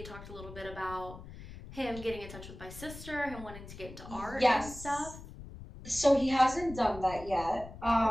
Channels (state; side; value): noise; left; rumble, 14 dB below the sound